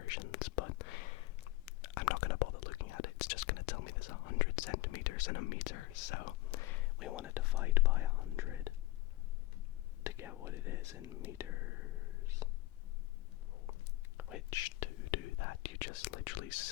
but I'm not going to bother looking at it. It's just going to tell me there's 100 centimeters in a meter, so we want to divide by 100 to get what it is in meters. Which, to do that, you just literally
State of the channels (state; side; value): quieter; right; 18.6 dB